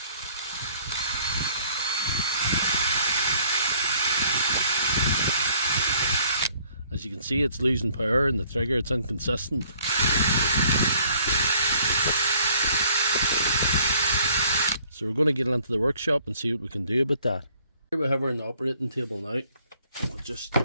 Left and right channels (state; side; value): inverted; both; correlation -0.59